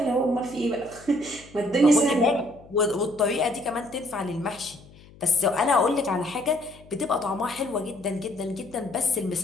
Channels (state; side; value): noise; left; hum, 23 dB below the sound